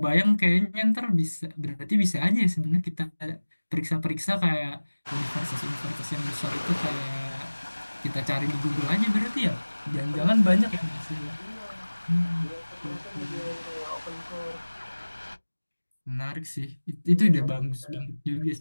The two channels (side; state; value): both; inverted; correlation -1.00